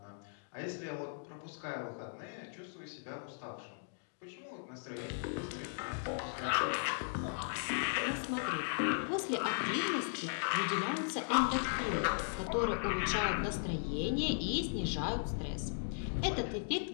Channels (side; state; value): right; silent; digital silence